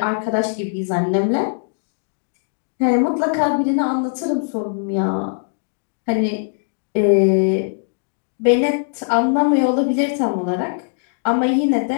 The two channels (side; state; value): right; silent; digital silence